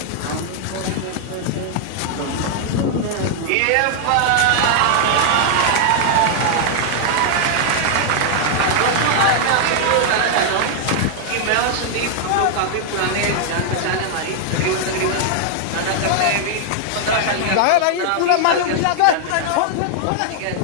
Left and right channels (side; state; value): both; different; correlation -0.01